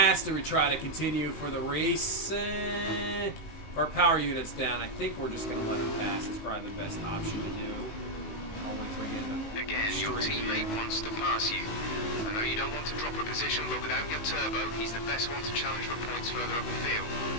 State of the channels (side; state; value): right; late; 19 ms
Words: Do we try to continue for the race? If our power unit's down, I think we're just going to let him pass. It's probably the best option to do. Again, your teammate wants to pass you. I know you don't want to drop a position, but without your turbo, he's the best one to challenge for points further up the field.